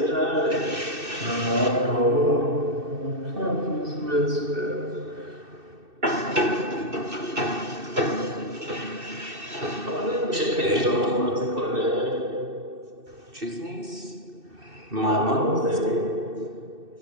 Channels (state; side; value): late; left; 2.6 ms